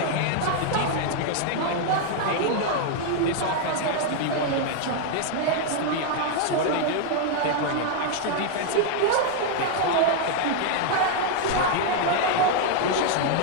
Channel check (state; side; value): different; both; correlation 0.00